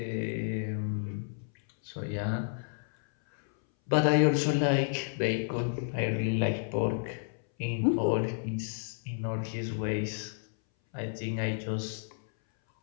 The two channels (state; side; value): silent; right; 57 dB below the other